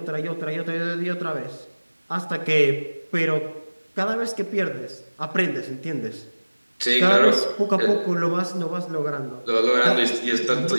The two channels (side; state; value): both; inverted; correlation -1.00